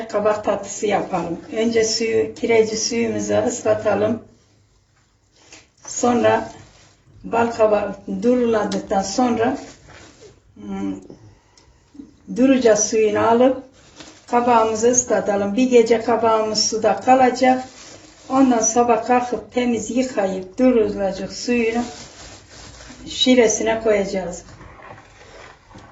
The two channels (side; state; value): both; identical; correlation 1.00